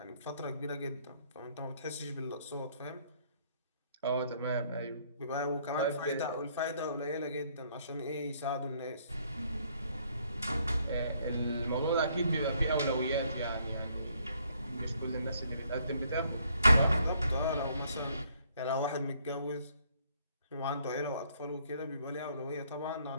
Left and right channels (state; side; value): inverted; both; correlation -0.67